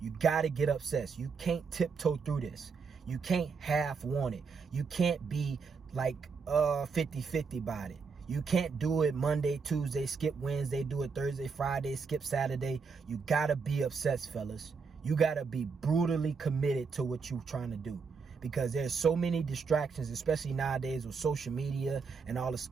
You gotta get obsessed. You can't tiptoe through this. You can't half want it. You can't be like 50-50 about it. You can't do it Monday, Tuesday, skip Wednesday, do it Thursday, Friday, skip Saturday. You gotta be obsessed, fellas. You gotta be brutally committed to what you're trying to do. Because there's so many distractions, especially nowadays with social media and all the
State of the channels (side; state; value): left; quieter; 5.2 dB